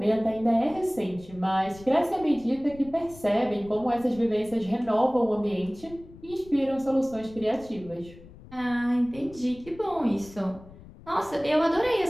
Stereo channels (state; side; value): noise; left; rumble, 20 dB below the sound